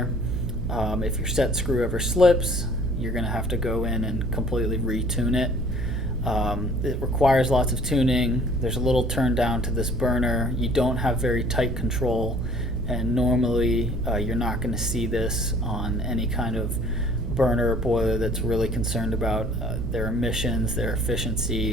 If your set screw ever slips, you're going to have to go in and completely retune it. It requires lots of tuning. There's a little turn down to this burner. You don't have very tight control, and normally you're not going to see this on any kind of burner or boiler that's really concerned about their emissions, their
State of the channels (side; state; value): right; noise; hum, 4 dB below the sound